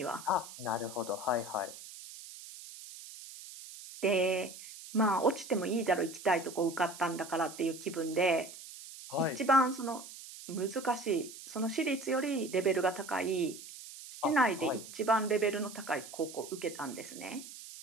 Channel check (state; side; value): noise; right; hiss, 14 dB below the sound